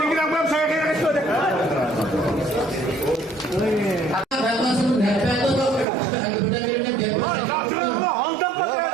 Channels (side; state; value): left; drops out; at 5.9 s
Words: giren ben sana geri istiyor.